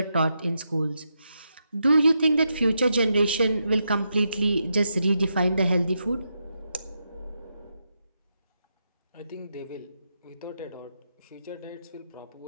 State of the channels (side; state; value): both; inverted; correlation -0.84